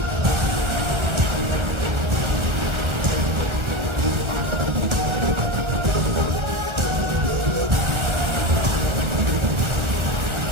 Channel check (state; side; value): late; left; 1.3 ms